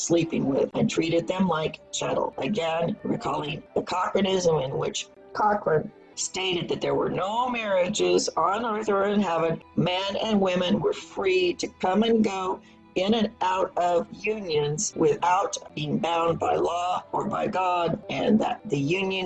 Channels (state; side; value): identical; both; correlation 1.00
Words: with and treated them like chattel. Again, recalling the Cochranism, in which Cochrane stated that there were no marriages on earth or in heaven. Men and women were free to come and go in and out of unions without being bound by law or by God, and that the